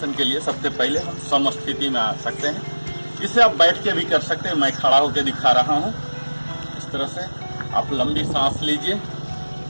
के लिए सबसे पहले हम समस्थिति में आ सकते हैं। इसे आप बैठ के भी कर सकते हैं, मैं खड़ा होकर दिखा रहा हूँ। इस तरह से आप लंबी सांस लीजिए,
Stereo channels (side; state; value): both; inverted; correlation -1.00